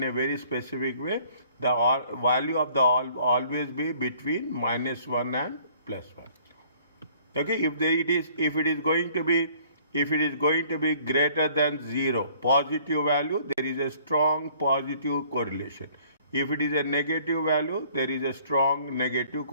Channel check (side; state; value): both; inverted; correlation -0.58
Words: a very specific way. The value of the always be between -1 and +1. Okay, if it is going to be greater than 0, positive value, there is a strong positive correlation. If it is a negative value, there is a strong negative